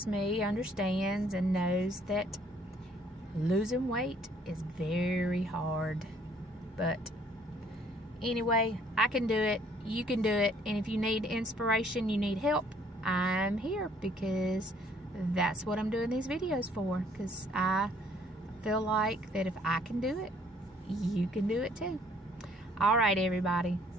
me understands and knows that losing weight is very hard. But anyway, I can do it, you can do it, and if you need inspiration, you need help, I'm here, because that's what I'm doing these videos for, because I feel like that if I can do it, you can do it too. All right, everybody,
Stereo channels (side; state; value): both; normal; correlation 0.62